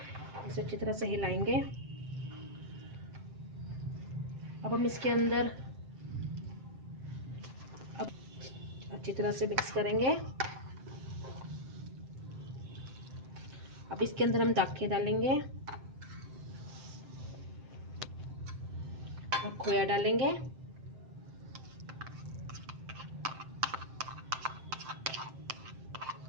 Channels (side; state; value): left; late; 7.7 ms